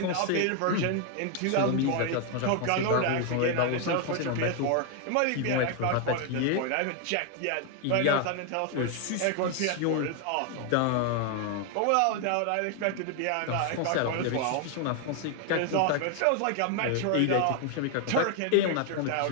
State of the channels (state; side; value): different; both; correlation 0.01